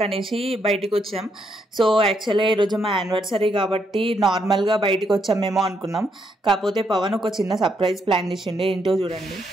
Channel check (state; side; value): normal; both; correlation 0.77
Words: అనేసి బయటికి వచ్చాం. సో యాక్చువల్గా ఈరోజు మా యానివర్సరీ కాబట్టి నార్మల్గా బయటికి వచ్చామేమో అనుకున్నాం. కాకపోతే పవన్ ఒక చిన్న సర్ప్రైజ్ ప్లాన్ చేసిండే. ఏంటో చూడండి